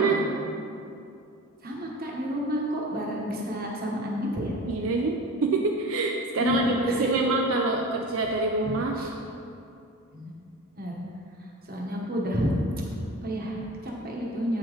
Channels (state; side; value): normal; both; correlation 0.35